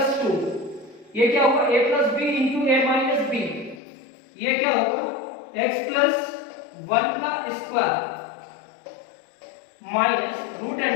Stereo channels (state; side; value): drops out; right; at 3.8 s